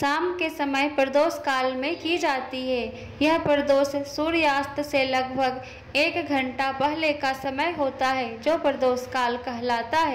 के समय प्रदोष काल में की जाती है। यह प्रदोष सूर्यास्त से लगभग 1 घंटा पहले का समय होता है, जो प्रदोष काल कहलाता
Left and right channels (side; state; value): both; identical; correlation 1.00